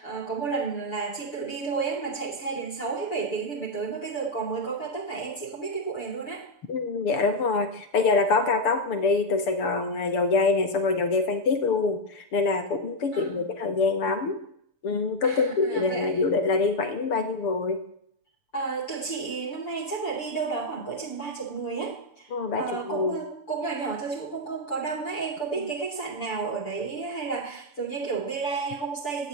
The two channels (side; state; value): right; late; 6.8 ms